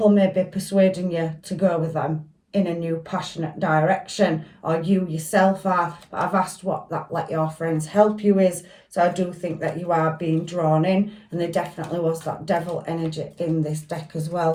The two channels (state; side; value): identical; both; correlation 1.00